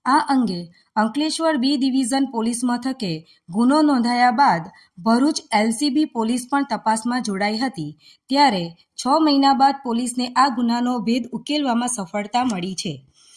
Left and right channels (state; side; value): identical; both; correlation 1.00